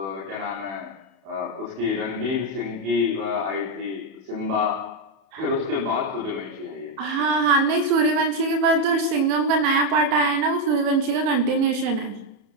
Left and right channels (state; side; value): late; left; 31 ms